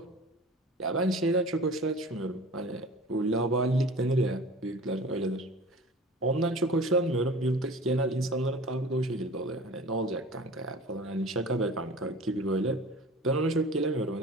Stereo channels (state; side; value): normal; both; correlation 0.40